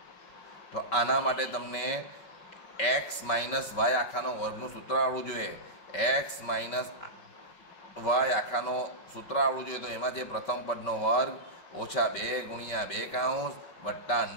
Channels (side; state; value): right; late; 5.5 ms